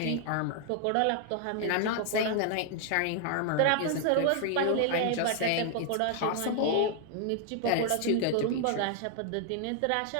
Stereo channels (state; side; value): different; both; correlation 0.00